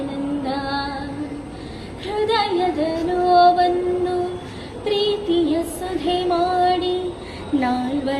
ಹೃದಯದ ನೋವನ್ನು ಪ್ರೀತಿಯ ಸುಧೆ ಮಾಡಿ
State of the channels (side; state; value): both; identical; correlation 1.00